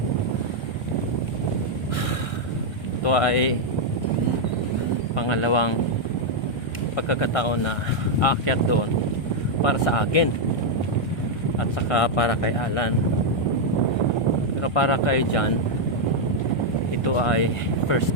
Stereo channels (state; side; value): late; right; 1.3 ms